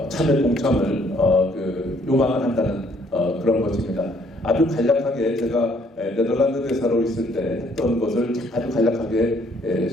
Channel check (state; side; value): normal; both; correlation 0.64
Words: 참여 공참을 요망을 한다는 그런 것입니다. 아주 간략하게 제가 네덜란드 대사로 있을 때 했던 것을 아주 간략하게